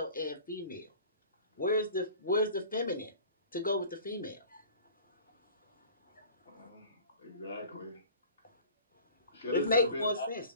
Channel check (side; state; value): both; inverted; correlation -0.45